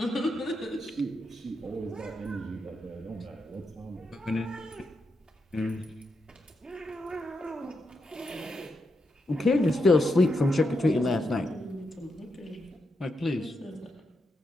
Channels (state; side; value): normal; both; correlation 0.84